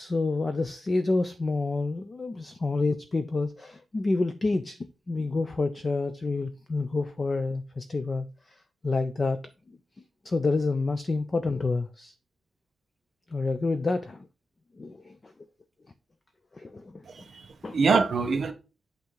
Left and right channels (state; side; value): normal; both; correlation 0.91